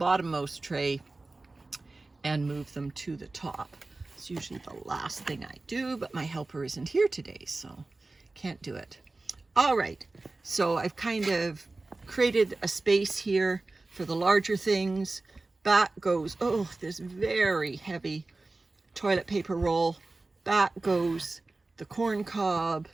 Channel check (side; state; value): left; quieter; 3.3 dB